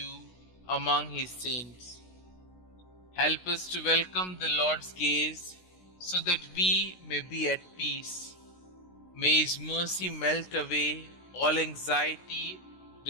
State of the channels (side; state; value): right; late; 16 ms